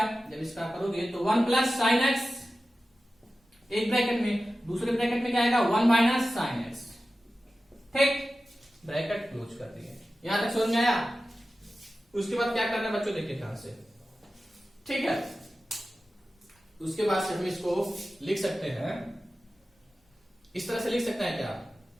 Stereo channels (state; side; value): normal; both; correlation 0.95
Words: जब इसका करोगे तो 1 प्लस साइन एक्स एक ब्रैकेट में, दूसरे ब्रैकेट में क्या आएगा 1 माइनस साइन एक्स। ठीक, ब्रैकेट क्लोज कर दिए। यहां तक समझ में आया। उसके बाद क्या करना है बच्चों, देखिए ध्यान से। ठीक है, उसके बाद से हम इसको लिख सकते हैं, इस तरह से लिख सकते हैं क्या,